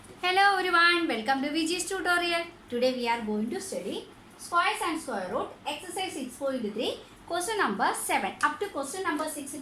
Hello everyone, welcome to VG's tutorial. Today we are going to study squares and square root exercise 6.3 question number 7. Up to question number 6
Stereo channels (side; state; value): both; identical; correlation 1.00